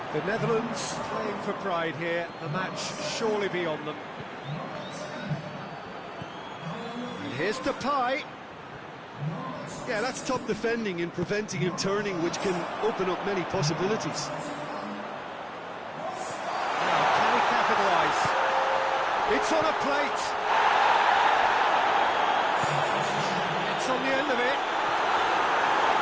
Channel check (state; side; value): identical; both; correlation 1.00